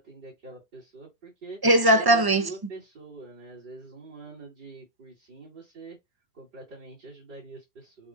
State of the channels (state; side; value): late; left; 1.0 ms